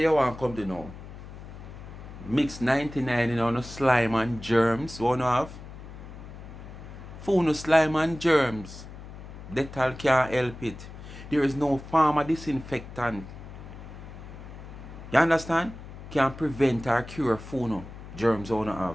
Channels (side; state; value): left; noise; hum, 14 dB below the sound